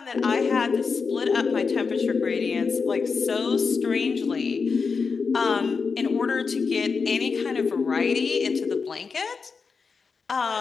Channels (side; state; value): right; quieter; 5.1 dB